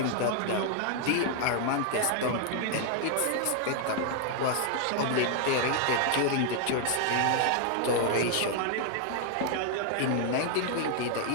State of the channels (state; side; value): different; both; correlation 0.00